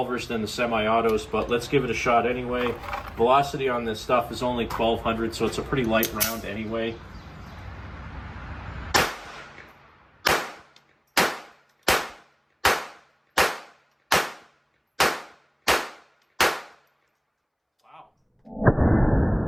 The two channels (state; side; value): identical; both; correlation 1.00